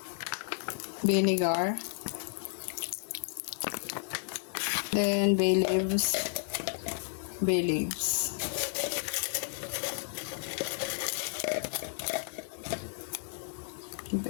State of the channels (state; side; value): silent; right; digital silence